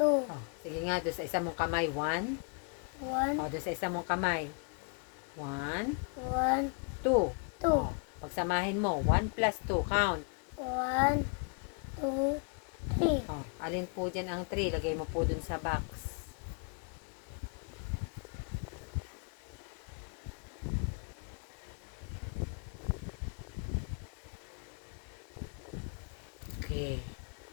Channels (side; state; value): right; quieter; 38.9 dB